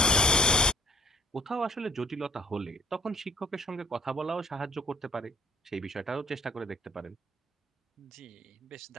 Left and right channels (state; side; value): normal; both; correlation 0.58